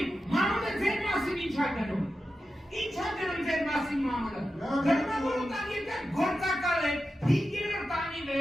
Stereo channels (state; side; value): normal; both; correlation 0.91